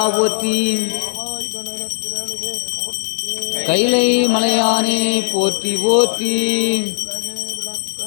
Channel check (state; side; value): silent; right; 60 dB below the other